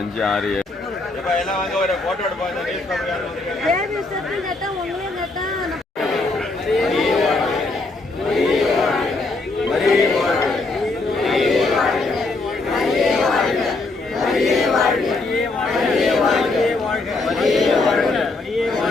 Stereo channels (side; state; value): right; quieter; 3.3 dB